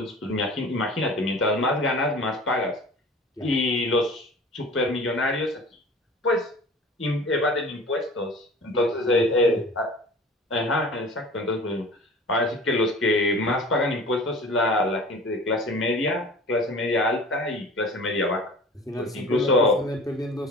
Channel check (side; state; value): both; normal; correlation 0.41